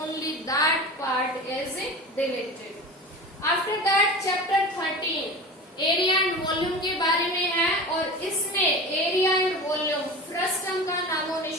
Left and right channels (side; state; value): both; normal; correlation 0.32